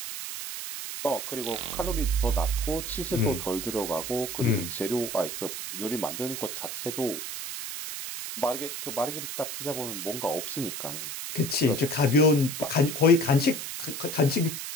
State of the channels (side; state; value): right; noise; hiss, 6 dB below the sound